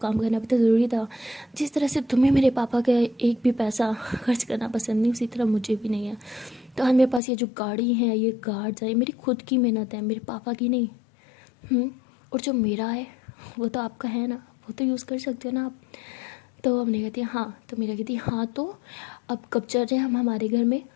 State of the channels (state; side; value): drops out; right; at 7.2 s